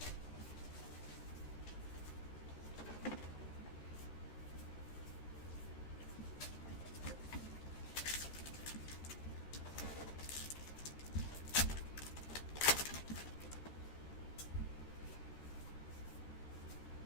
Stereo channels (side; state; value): right; late; 13 ms